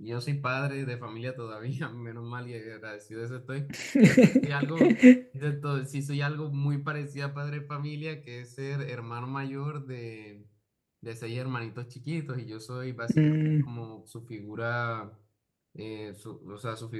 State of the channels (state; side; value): identical; both; correlation 1.00